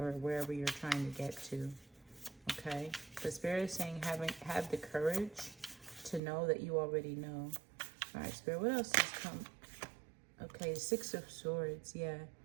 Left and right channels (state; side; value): drops out; left; at 6.2 s